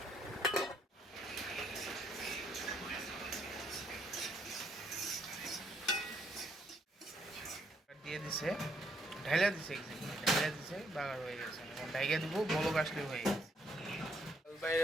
দিয়ে দিছে, ঢাইলা দিছে, বাগার হয়ে গেছে। এখন ঢাইকা দিব, বলক আসলে হয়ে গেছে।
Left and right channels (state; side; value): normal; both; correlation 0.71